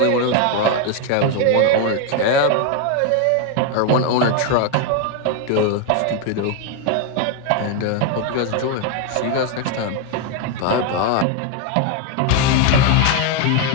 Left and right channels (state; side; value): different; both; correlation 0.01